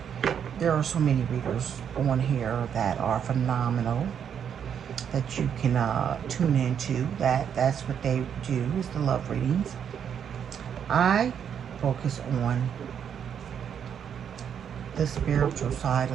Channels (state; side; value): quieter; left; 8.2 dB